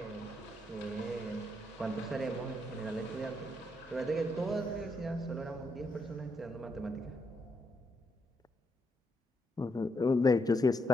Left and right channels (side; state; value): both; normal; correlation 0.78